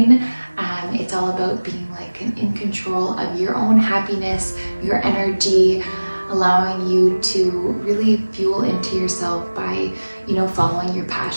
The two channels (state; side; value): inverted; both; correlation -1.00